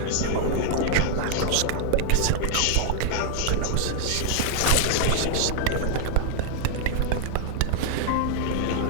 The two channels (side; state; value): both; different; correlation 0.00